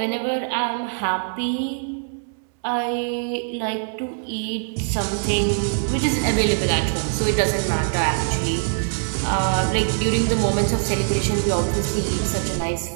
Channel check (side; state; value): left; silent; 64 dB below the other